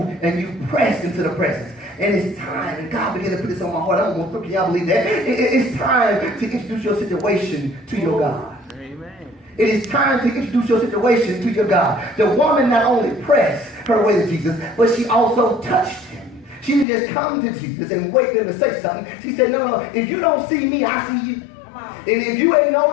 and you press into the presence. And it's time, and God began to put this on my heart. I don't know if y'all believe that. It's time to introduce your situation to your God. Amen. It is time to introduce your situation to your God. The woman not only pressed her way to Jesus, but she also touched Him. She didn't just come to Jesus and wait for Him to say something. She said, no, if you don't see me, I see you. And if you ain't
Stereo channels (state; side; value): drops out; right; at 16.9 s